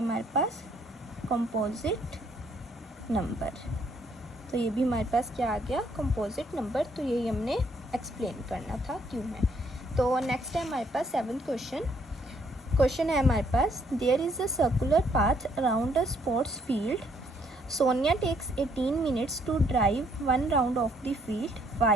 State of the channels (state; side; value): normal; both; correlation 0.68